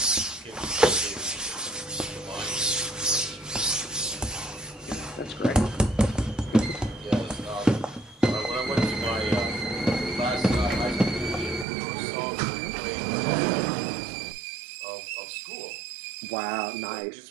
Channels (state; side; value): drops out; left; at 11.7 s